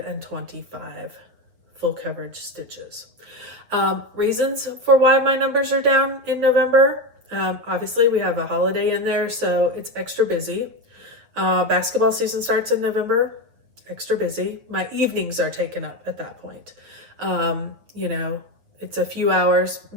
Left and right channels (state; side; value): late; left; 8.7 ms